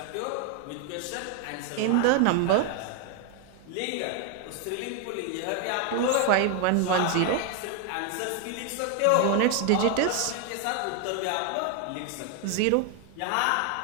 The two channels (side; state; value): both; different; correlation 0.01